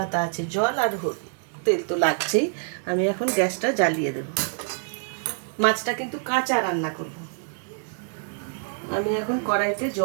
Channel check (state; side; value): silent; left; digital silence